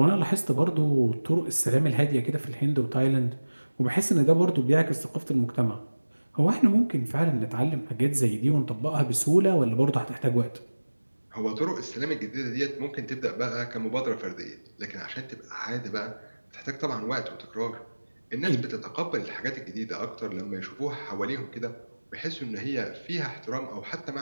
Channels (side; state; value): both; inverted; correlation -1.00